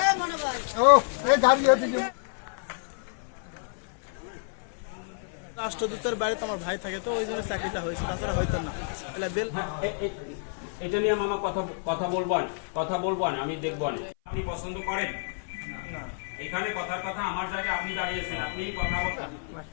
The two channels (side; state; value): right; silent; 56 dB below the other